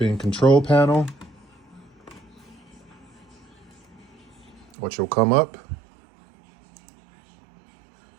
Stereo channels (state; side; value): drops out; left; at 4.7 s